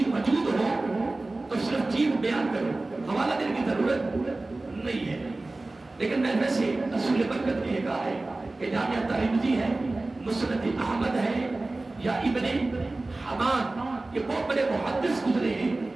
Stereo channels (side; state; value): left; quieter; 3.1 dB